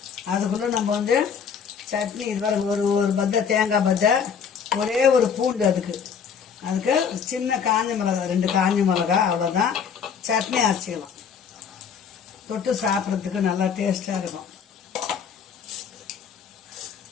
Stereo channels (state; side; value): quieter; right; 6.9 dB